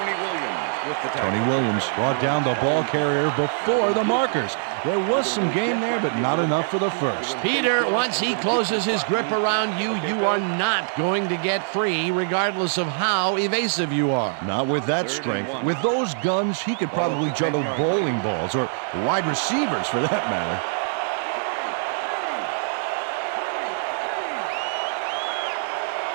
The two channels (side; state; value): left; silent; 63 dB below the other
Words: Tony Williams brought down the ball carrier before the markers. There was some gain there, but not enough for the first. Peter, once he closes his grip around you, you are not going to get free, regardless of how evasive you are. Not with that strength. With those guns, he could probably juggle bowling balls or wide receivers for that matter.